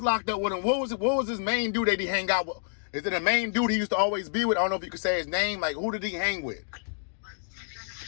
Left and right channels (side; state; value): right; silent; digital silence